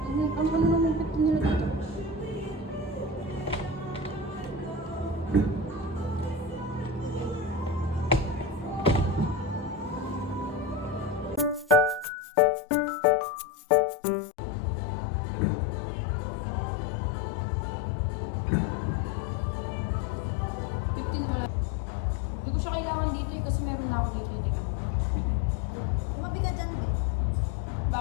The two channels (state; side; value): drops out; right; at 12.1 s